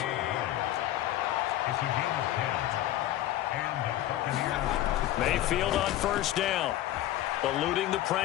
Mayfield on first down. Eluding the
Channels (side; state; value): right; quieter; 13.9 dB